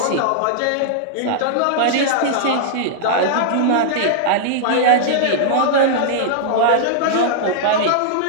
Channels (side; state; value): both; different; correlation -0.01